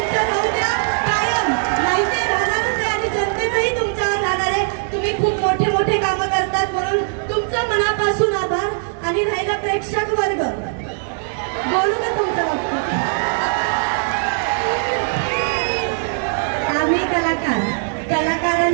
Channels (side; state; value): left; silent; digital silence